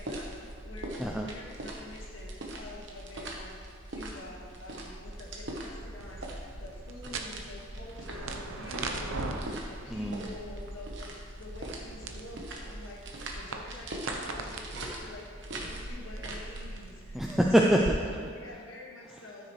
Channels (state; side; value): normal; both; correlation 0.70